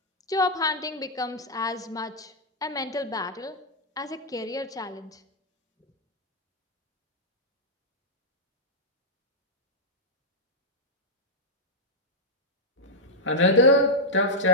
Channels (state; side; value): normal; both; correlation -0.05